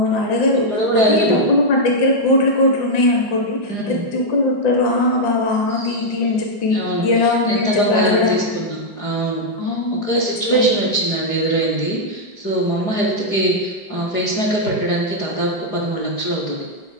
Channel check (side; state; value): right; late; 4.9 ms